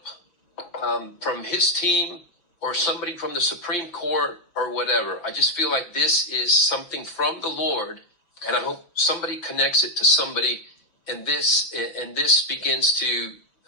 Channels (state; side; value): late; right; 6.3 ms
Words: from his team, or somebody from the Supreme Court or whatever. I just feel like this is something from the Lord, and I hope somebody connects it to somebody, and this begins to,